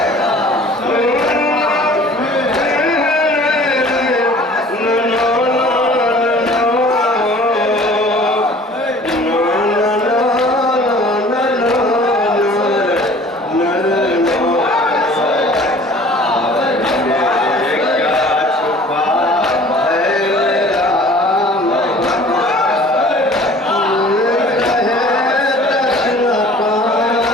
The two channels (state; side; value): normal; both; correlation 0.49